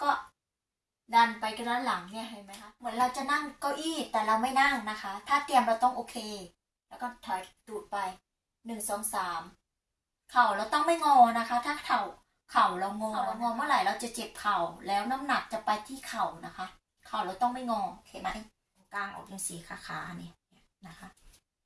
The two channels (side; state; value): both; identical; correlation 1.00